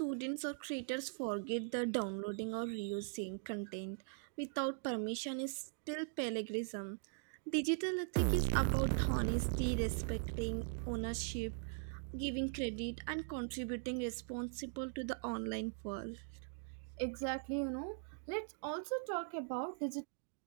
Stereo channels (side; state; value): left; silent; digital silence